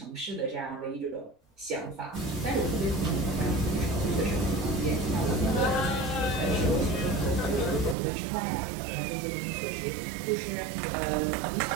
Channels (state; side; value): drops out; left; at 8.0 s